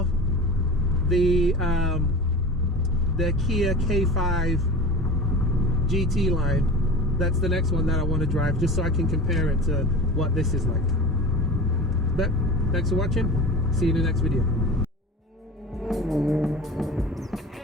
the Kia K5 GT line. That's the next one that I want to drive, just so I can compare it to what this is like. But thanks for watching. See you in the next video.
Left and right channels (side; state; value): both; normal; correlation 0.34